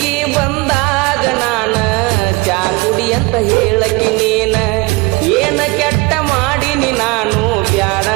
ಬಂದಾಗ ನಾನ ಚಾ ಕುಡಿ ಅಂತ ಹೇಳಕಿ ನೀನ, ಏನ ಕೆಟ್ಟ ಮಾಡಿನಿ ನಾನು ಬ್ಯಾಡ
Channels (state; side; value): quieter; left; 25.2 dB